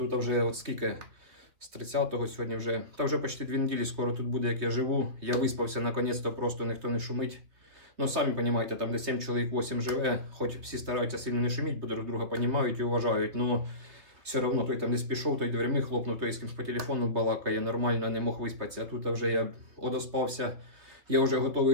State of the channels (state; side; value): late; left; 3.0 ms